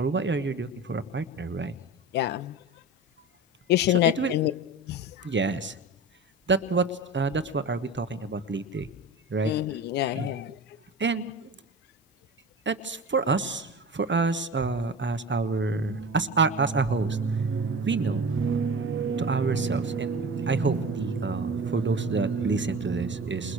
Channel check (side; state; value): both; normal; correlation 0.33